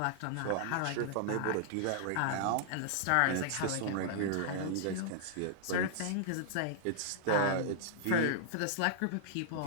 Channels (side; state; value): both; different; correlation -0.01